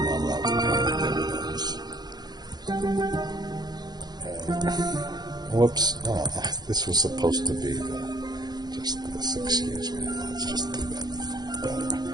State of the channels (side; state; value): left; late; 0.20 ms